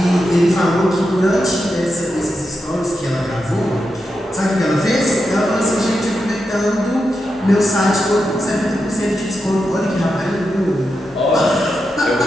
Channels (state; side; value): normal; both; correlation 0.87